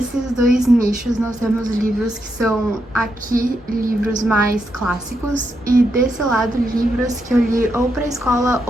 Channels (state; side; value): normal; both; correlation 0.82